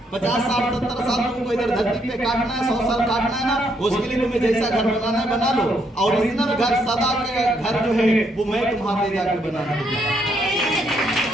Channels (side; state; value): both; normal; correlation 0.73